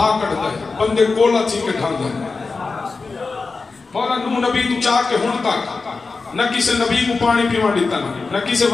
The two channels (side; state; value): right; quieter; 4.2 dB